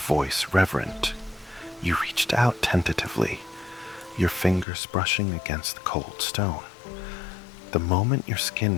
reverent. You reached out tentatively, your fingers brushing against the cold stone. The moment your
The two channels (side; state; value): right; drops out; at 4.7 s